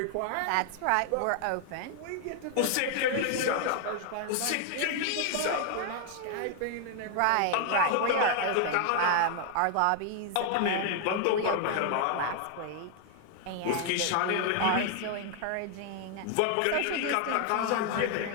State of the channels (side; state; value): both; different; correlation 0.00